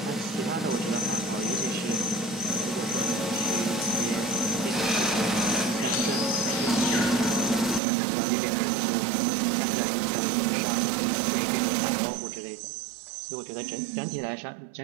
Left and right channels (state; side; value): drops out; left; at 7.8 s